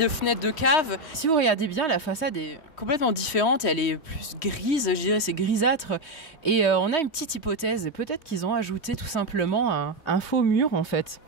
fenêtre de cave. Si vous regardez bien, la façade est complètement différente. Elle est plus grise, je dirais, c'est grisâtre. Et on a une petite hypothèse. Peut-être qu'ils ont ajouté tout simplement un faux mur en fait.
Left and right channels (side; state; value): right; late; 3.1 ms